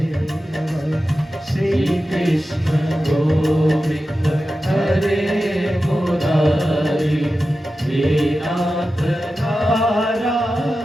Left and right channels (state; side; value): normal; both; correlation 0.93